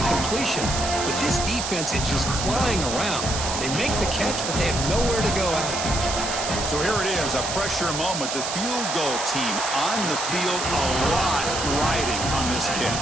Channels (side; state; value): right; noise; hiss, 4 dB below the sound